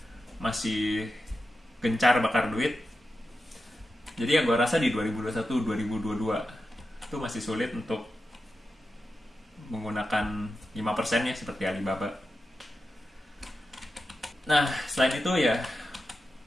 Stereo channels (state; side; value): normal; both; correlation 0.91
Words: masih gencar bakar duit. Jadi ya gue rasa di 2021-2022 itu masih sulit untuk menggunakan 5% ya, seperti Alibaba. Nah, selain itu ya,